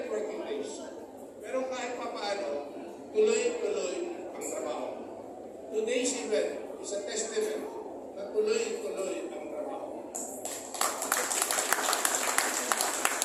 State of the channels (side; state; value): both; identical; correlation 1.00